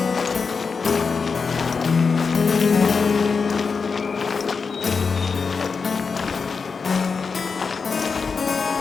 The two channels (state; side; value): quieter; right; 5.1 dB